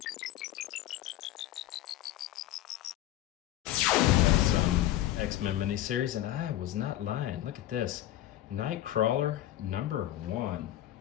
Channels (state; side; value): quieter; right; 13.6 dB